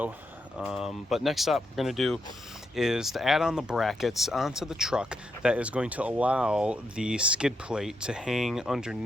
But next up we're going to do is to add on the brackets onto the truck that is going to allow the skid plate to hang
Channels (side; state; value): both; normal; correlation 0.81